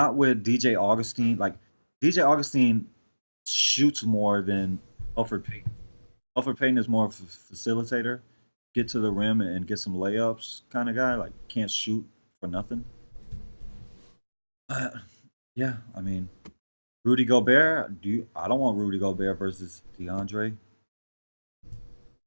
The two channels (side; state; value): both; inverted; correlation -1.00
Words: with DJ Augustine. Like, DJ Augustine shoots more than Alfred Payton. Alfred Payton is more of a facilitator, get to the rim and get some layups kind of guy. Like, can't shoot for nothing. Yeah, I mean, Rudy Gobert. I don't want Rudy Gobert versus DeAndre,